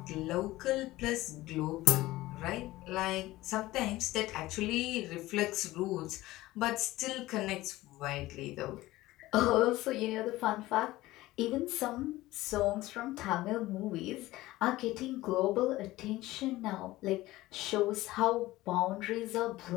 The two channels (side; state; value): right; quieter; 17.6 dB